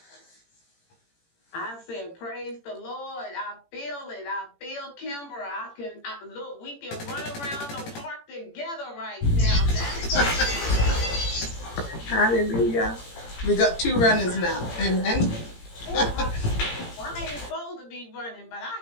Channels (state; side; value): late; right; 17 ms